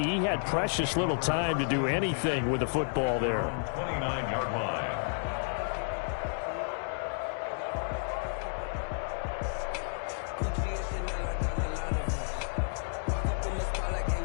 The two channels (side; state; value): right; silent; digital silence